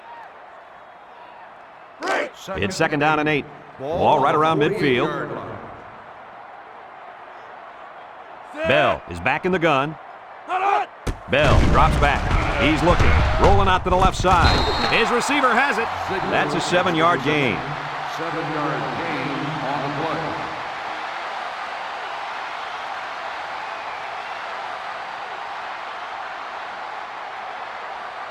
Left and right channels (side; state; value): both; identical; correlation 1.00